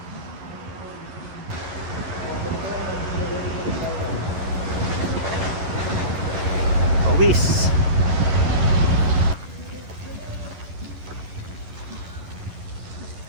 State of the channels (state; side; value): late; left; 11 ms